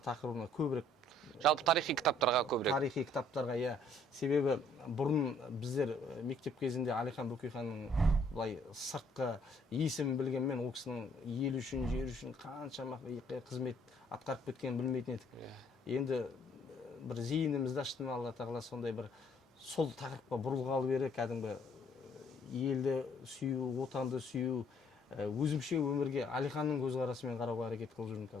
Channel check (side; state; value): both; normal; correlation 0.63